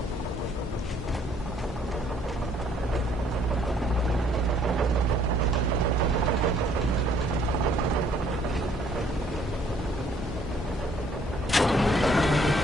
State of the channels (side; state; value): both; normal; correlation 0.63